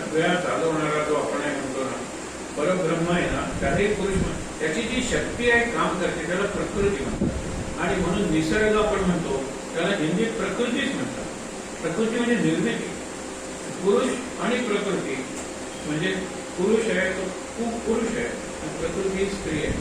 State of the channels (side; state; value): both; identical; correlation 1.00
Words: चालवणारा जो आपण आहे म्हणतो ना परब्रह्म आहे ना, त्याचे पुरुष त्याची जी शक्ती आहे काम करते त्याला प्रकृती म्हणतात. आणि म्हणून निसर्ग आपण म्हणतो त्याला हिंदीत प्रकृतीच म्हणतात. प्रकृती म्हणजे निर्मिती. पुरुष आणि प्रकृती म्हणजे पुरुष आहे तो खूप पुरुष आहे आणि प्रकृती स्त्री आहे.